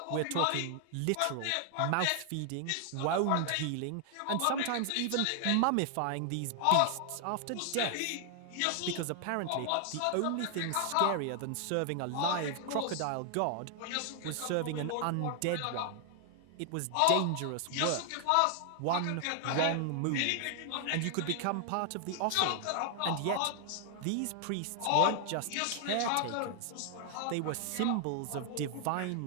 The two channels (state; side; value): different; both; correlation 0.00